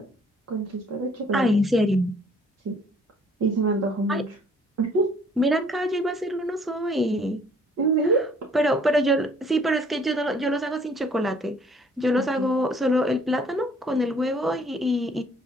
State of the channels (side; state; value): both; normal; correlation 0.59